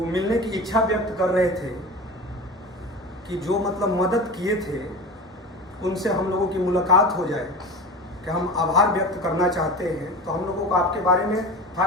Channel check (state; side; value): normal; both; correlation 0.31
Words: मिलने की इच्छा व्यक्त कर रहे थे कि जो मतलब मदद किए थे उनसे हम लोगों की मुलाकात हो जाए, कि हम आभार व्यक्त करना चाहते हैं। तो हम लोगों को आपके बारे में था